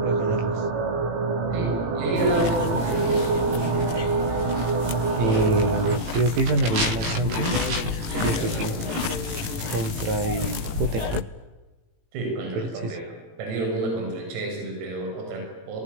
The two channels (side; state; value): left; late; 18 ms